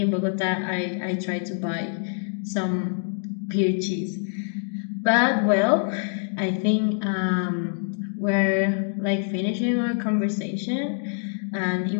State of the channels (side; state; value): right; silent; 62 dB below the other